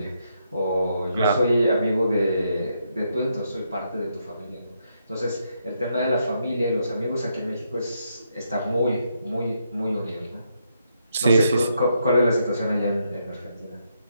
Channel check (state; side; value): inverted; both; correlation -0.78